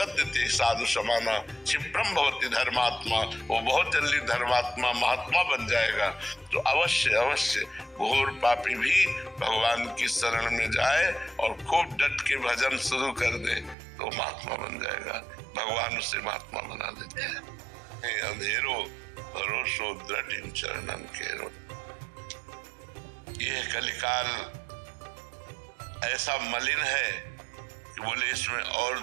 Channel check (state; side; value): drops out; left; at 13.8 s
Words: ते साधु समाना क्षिप्रम भवति धर्मात्मा। वो बहुत जल्दी धर्मात्मा महात्मा बन जाएगा। तो अवश्य अवश्य घोर पापी भी भगवान की शरण में जाए और खूब डट के भजन शुरू कर दे तो महात्मा बन जाएगा। भगवान उसे महात्मा बना देते हैं। अंधेरो भरोसो दृढ़ इन चरणन केरो। यह कलिकाल ऐसा मलिन है कि बोले इसमें और